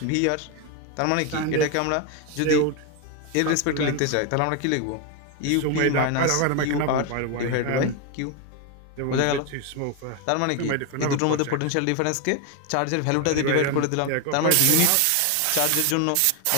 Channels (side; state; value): both; different; correlation 0.01